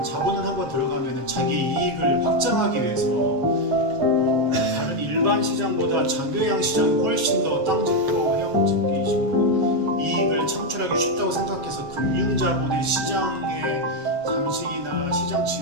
자본은 한번 들어가면 자기 이익을 확장하기 위해서 다른 일반 시장보다 장교양 시장이 훨씬 더 땅 짓고 해양 짓기 식으로 이익을 창출하기 쉽다고 생각해서 금융자본의 시장의 잠식이나 시장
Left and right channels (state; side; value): late; left; 7.6 ms